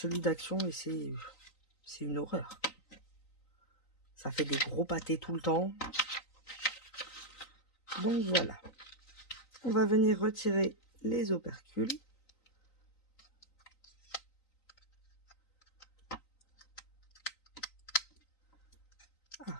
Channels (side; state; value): right; late; 3.9 ms